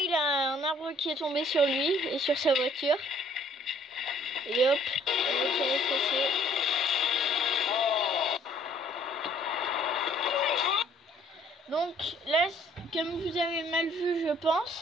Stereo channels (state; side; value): normal; both; correlation 0.60